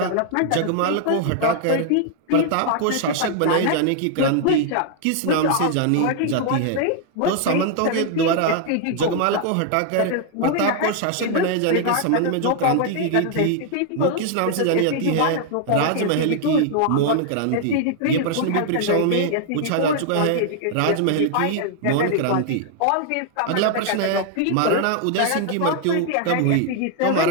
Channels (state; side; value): different; both; correlation 0.00